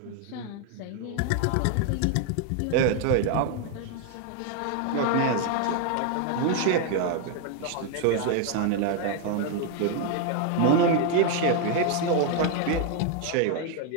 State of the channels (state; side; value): different; both; correlation 0.01